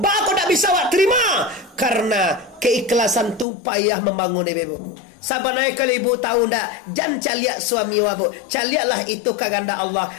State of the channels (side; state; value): right; drops out; at 3.5 s